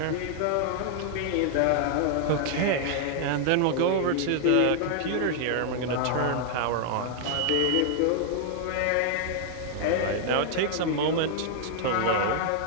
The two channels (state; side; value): different; both; correlation 0.00